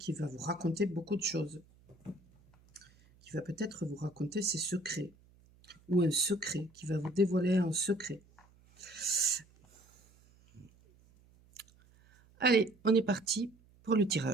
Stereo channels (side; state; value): right; noise; hum, 29 dB below the sound